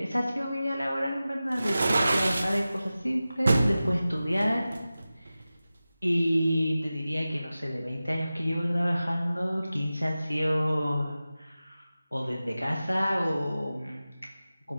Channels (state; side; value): inverted; both; correlation -0.95